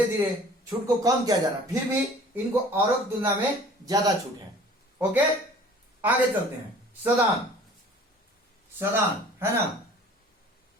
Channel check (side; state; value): both; normal; correlation 0.48